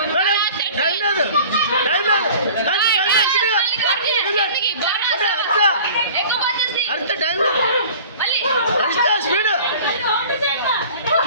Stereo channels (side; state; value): both; inverted; correlation -0.44